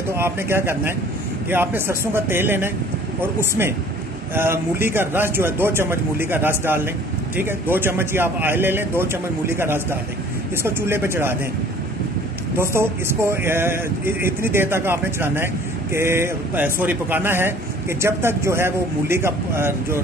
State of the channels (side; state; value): both; normal; correlation 0.51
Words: तो आपने क्या करना है कि आपने सरसों का तेल लेना है और उसमें मूली का रस जो है 2 चम्मच मूली का रस डाल लें, ठीक है। 2 चम्मच ही आप ऑयल ले लें, 2 चम्मच मूली का रस डाल दें, इसको चूल्हे पे चढ़ा दें। दोस्तों इसको इतनी देर तक आपने चलाना है कि पकाना है कि जब तक जो है वो मूली का जो